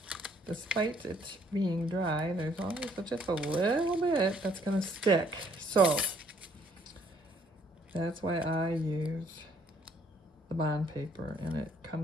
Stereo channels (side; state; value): both; normal; correlation 0.65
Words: despite it being dry, there's always just a little bit that's going to stick. So that's why I use the bond paper, and it